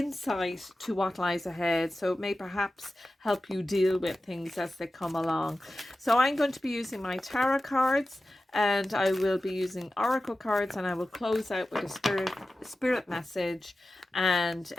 to what lies ahead. So it may perhaps help you deal with things as they come along. So I'm going to be using my tarot cards, and I will be using oracle cards, and I will close out with a spirit message and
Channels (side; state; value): both; normal; correlation 0.94